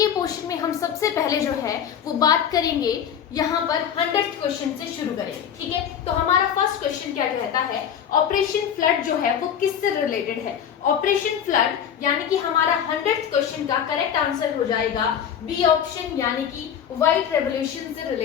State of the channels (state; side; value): quieter; right; 8.6 dB